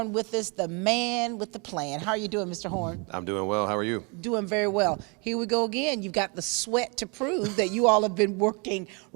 with us, the man with the plan. How are you doing, Mr. Horn? I'm doing well. How are you? Doing very well. Here we go again. You've got the sweat to prove that you all have been working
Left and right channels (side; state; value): left; quieter; 32.4 dB